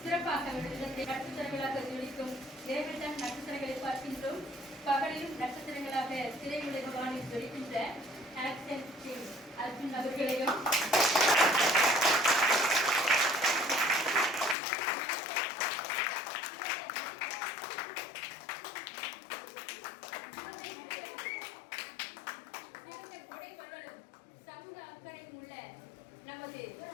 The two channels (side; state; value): right; drops out; at 14.6 s